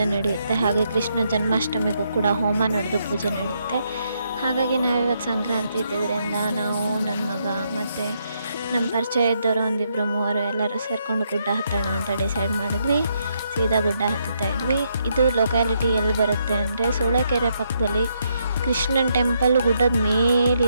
ನಡೆಯುತ್ತೆ, ಹಾಗೆ ಕೃಷ್ಣ ಜನ್ಮಾಷ್ಟಮಿಗೂ ಕೂಡ ಹೋಮ ನಡೆದು ಪೂಜೆ ನಡೆಯುತ್ತೆ. ಹಾಗಾಗಿ ನಾವಿವತ್ತು ಸಂಕ್ರಾಂತಿ ಇದ್ದಿದ್ದರಿಂದ ನಾವು, ನನ್ನ ಮಗ ಮತ್ತು ನಮ್ಮ ಪರಿಚಯ ಇದ್ದವರು ಒಂದಿಬ್ಬರು ಮೂವರು ಎಲ್ಲರೂ ಸೇರಿಕೊಂಡು ಗುಡ್ಡ ಹತ್ತೋಣ ಅಂತ ಡಿಸೈಡ್ ಮಾಡಿದ್ವಿ. ಸೀದಾ ಗುಡ್ಡ ಹತ್ತುತ್ತಾ ಇದ್ವಿ. ಇದು ಲೊಕ್ಯಾಲಿಟಿ ಎಲ್ಲಿ ಬರುತ್ತೆ ಅಂದರೆ ಸೂಳೆಕೆರೆ ಪಕ್ಕದಲ್ಲಿ ಕೃಷ್ಣನ ಟೆಂಪಲ್ ಗುಡ್ಡದ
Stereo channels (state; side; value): inverted; both; correlation -0.77